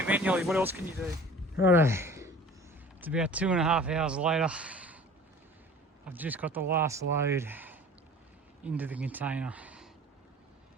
manually. What else can you do? Righto. It's about 2.5 hours later. I've just got the last load into the container.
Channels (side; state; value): both; normal; correlation 0.45